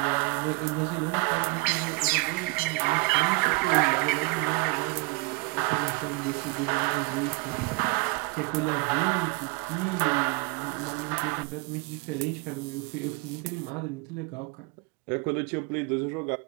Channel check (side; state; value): left; quieter; 27.8 dB